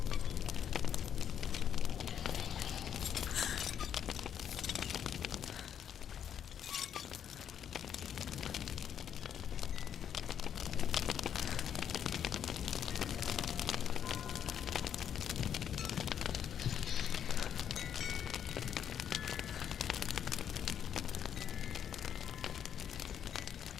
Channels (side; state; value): right; quieter; 8.9 dB